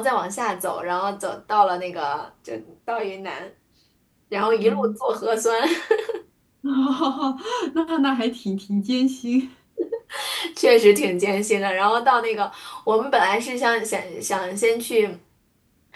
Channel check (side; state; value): both; identical; correlation 1.00